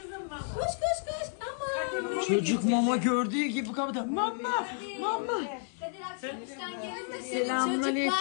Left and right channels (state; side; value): silent; right; 57 dB below the other